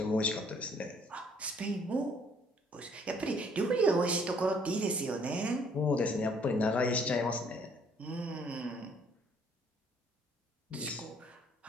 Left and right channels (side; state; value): both; normal; correlation 0.62